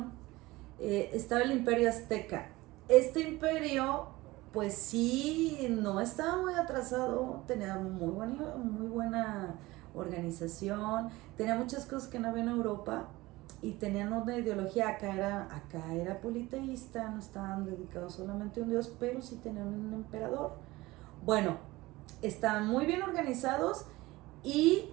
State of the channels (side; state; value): left; quieter; 19.9 dB